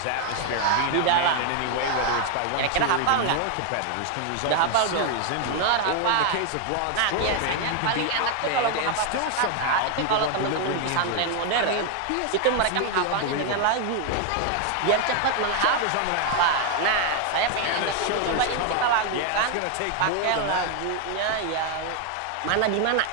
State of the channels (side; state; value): both; different; correlation 0.01